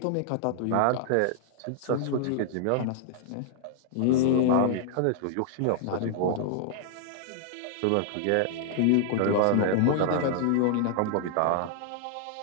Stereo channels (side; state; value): both; different; correlation -0.01